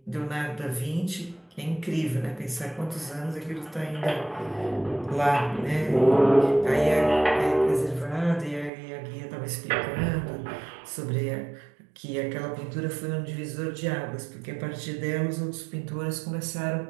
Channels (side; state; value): left; drops out; at 8.7 s